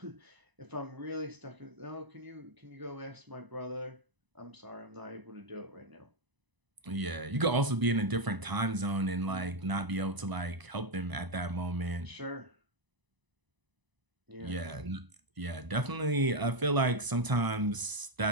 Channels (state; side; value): late; left; 1.0 ms